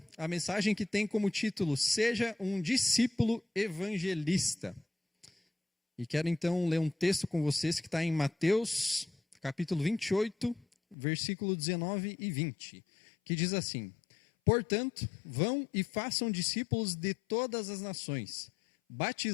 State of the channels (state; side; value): drops out; right; at 11.0 s